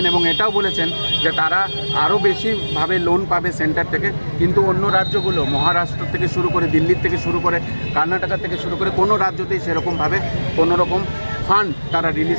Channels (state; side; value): inverted; both; correlation -1.00